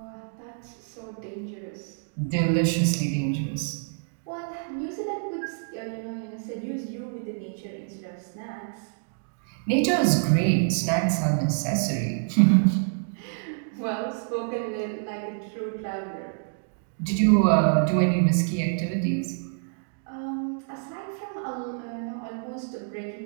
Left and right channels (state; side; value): silent; left; digital silence